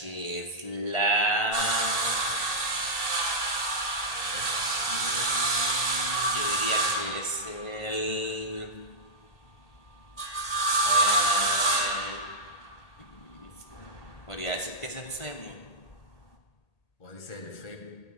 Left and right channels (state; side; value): late; right; 1.8 ms